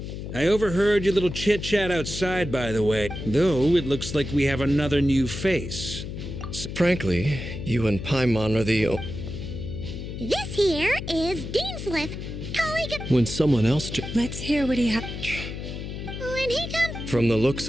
I overheard your little chit-chat outside, by the way. Though, it looks like we have another new face. Frankly, you and Paimon are the... This here is Deanslip, colleague of. When someone else. Let's hear what he has. When he comes. From the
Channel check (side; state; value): left; noise; hum, 8 dB below the sound